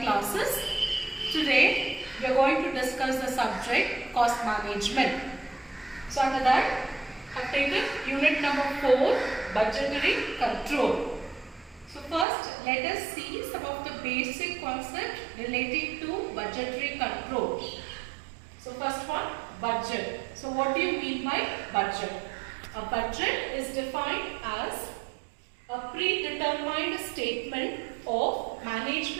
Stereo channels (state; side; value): drops out; left; at 12.2 s